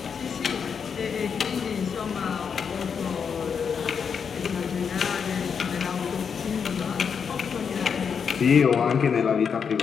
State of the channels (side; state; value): right; quieter; 6.6 dB